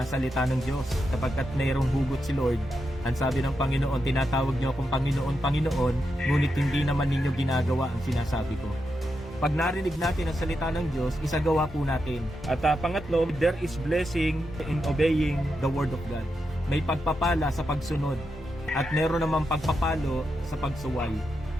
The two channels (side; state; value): both; normal; correlation 0.86